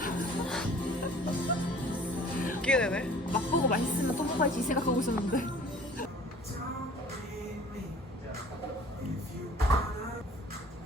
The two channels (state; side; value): normal; both; correlation 0.49